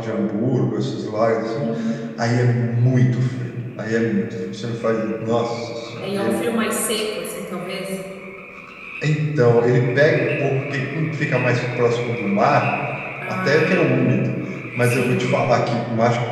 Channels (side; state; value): both; identical; correlation 1.00